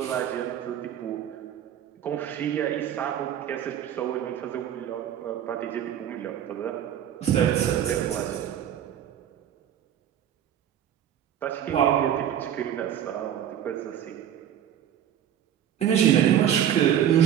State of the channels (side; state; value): left; quieter; 10.2 dB